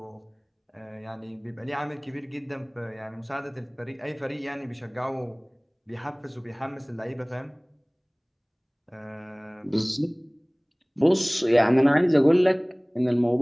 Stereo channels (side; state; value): both; identical; correlation 1.00